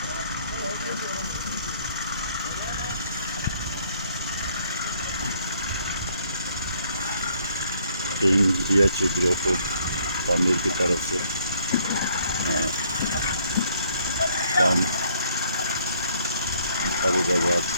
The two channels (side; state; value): both; inverted; correlation -0.64